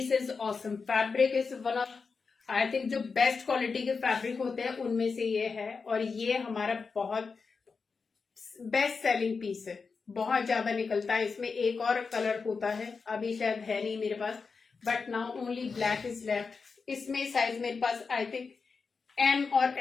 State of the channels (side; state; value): right; quieter; 4.9 dB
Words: is awesome. Fabric is one of I think जो बेस्ट क्वालिटी के फैब्रिक होते हैं उनमें से ये है, और ये हमारा बहुत बेस्ट सेलिंग पीस है। बहुत ज्यादा निकलता है। इसमें एक और कलर होता है, अभी शायद है नहीं मेरे पास, but now only black is left. इसमें साइज मेरे पास आई थिंक M और